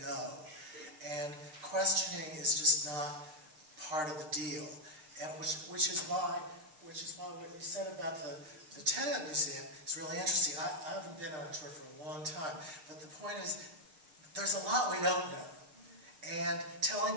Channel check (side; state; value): left; late; 6.6 ms